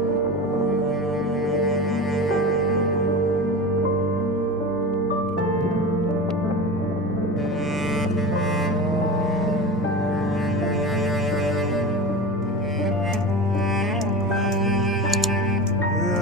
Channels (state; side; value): noise; right; hum, 21 dB below the sound